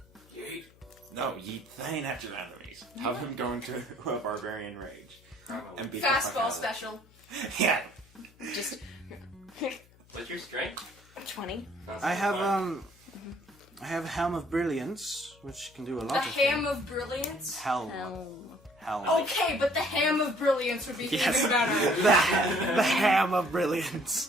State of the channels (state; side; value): noise; left; hum, 28 dB below the sound